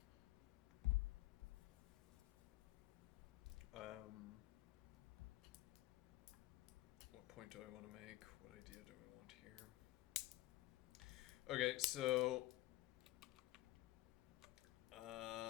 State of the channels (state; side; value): quieter; right; 17.6 dB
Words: What point do I want to make? What idea do we want here? Okay, so